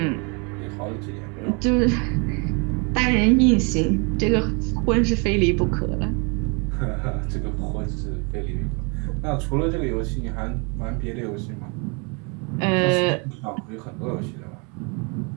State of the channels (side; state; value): left; quieter; 33.0 dB